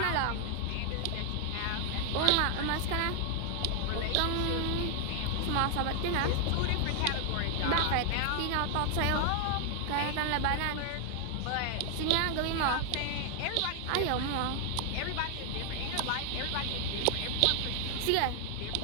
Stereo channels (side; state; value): both; different; correlation 0.00